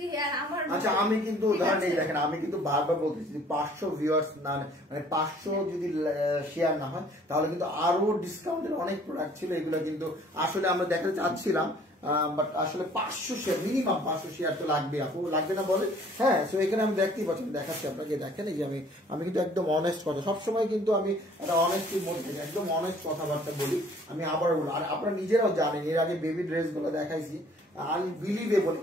হেয়ার। আচ্ছা, আমি কিন্তু উদাহরণ এই দেখেন, আমি কিন্তু বারবার বলতেছি 500 ভিউয়ার্স না, মানে 500 যদি শেয়ার না হয় তাহলে কিন্তু আরো ডিসকাউন্টের অনেক প্রোডাক্ট ছিল, এগুলো কিন্তু আসলে আমরা দেখাতে চাচ্ছিলাম, বাট আসলে 500 শেয়ার, মিনিমাম 500 শেয়ার তো লাগবে। আপু লাগবে না বলে? হ্যাঁ, তো এখানে আমি দেখতেই পাচ্ছি, দেখাচ্ছি আপনাকে, দেখেন এই যে আমি কিন্তু একদম অনেস্ট কথা, সবসময় কিন্তু আমি একটা অনেস্টির মধ্যে একদম অনেস্ট কথাবার্তা বলি। আমি আবার বলি, আর আপনারা নিজেরাও জানেন, এর আগে বেবি ড্রেস গুলো দেখাইছি, আনবিলিভেবল,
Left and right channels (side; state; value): both; normal; correlation 0.56